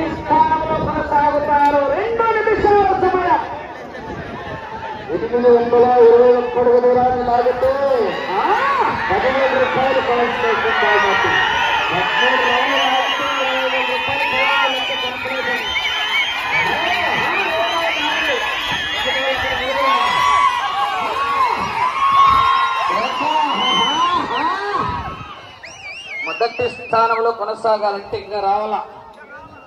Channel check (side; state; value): both; identical; correlation 1.00